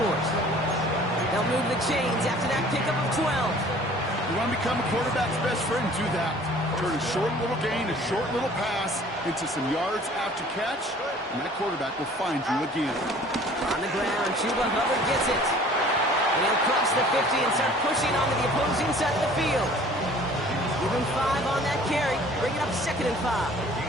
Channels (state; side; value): normal; both; correlation 0.50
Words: They'll move the chains after that pickup of 12. You want to become a quarterback's best friend? Do that. Turn a short little gain, a short little pass into some yards after catch, and that quarterback will find you again. On the ground, Chuba Hubbard gets it. And he'll cross the 50 and start pushing onto the opposing side of the field. Give him 5 on that carry, bring it up 2nd and 5.